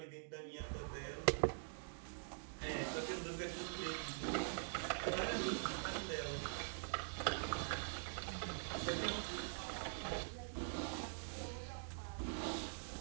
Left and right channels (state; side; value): silent; left; digital silence